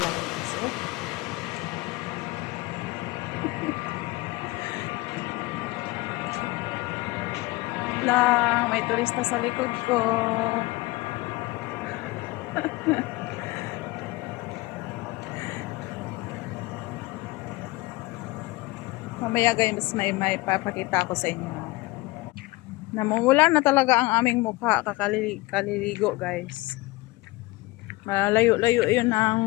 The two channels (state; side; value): quieter; right; 21.7 dB